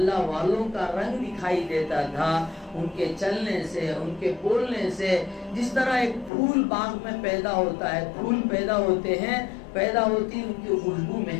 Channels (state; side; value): drops out; right; at 6.3 s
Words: والوں کا رنگ دکھائی دیتا تھا، ان کے چلنے سے، ان کے بولنے سے۔ جس طرح ایک پھول باغ میں پیدا ہوتا ہے، پھول پیدا ہوتے ہیں، پیدا ہوتی ان کی خوشبو